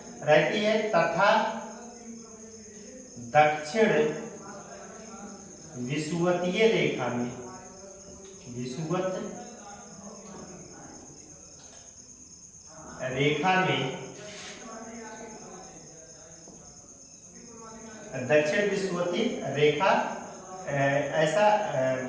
रहती है तथा दक्षिण विषुवतीय रेखा में, विषुवत रेखा में दक्षिण विषुवतीय रेखा ऐसा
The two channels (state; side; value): identical; both; correlation 1.00